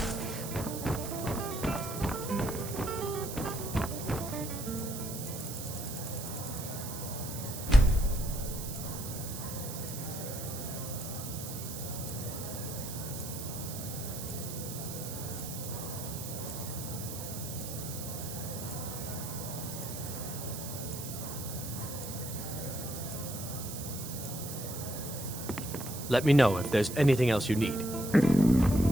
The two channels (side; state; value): right; noise; hiss, 8 dB below the sound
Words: Let me know if there's anything else you need.